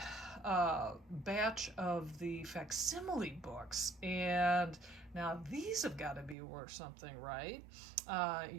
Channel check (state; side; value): drops out; left; at 6.4 s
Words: batch of the facsimile books, and now these have got to be worth something, right?